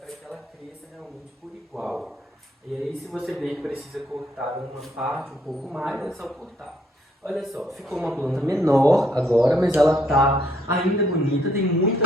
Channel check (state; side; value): normal; both; correlation 0.69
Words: que ela cresça realmente por igual. E aí, se você ver que precisa cortar uma parte um pouco mais, é só cortar. Olha só, ficou uma planta menor agora, mas ela está ainda bonita, tem